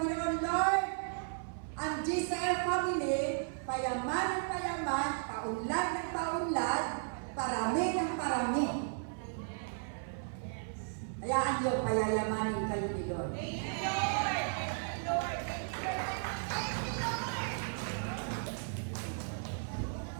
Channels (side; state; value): left; silent; 54 dB below the other